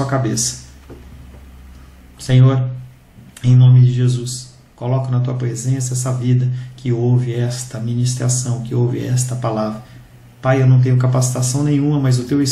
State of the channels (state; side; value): identical; both; correlation 1.00